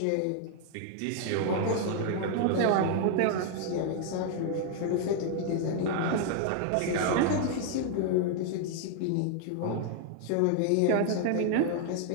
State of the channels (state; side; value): different; both; correlation 0.00